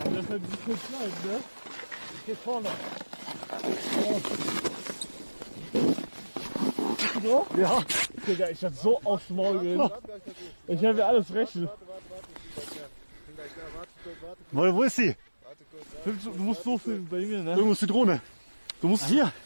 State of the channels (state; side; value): inverted; both; correlation -1.00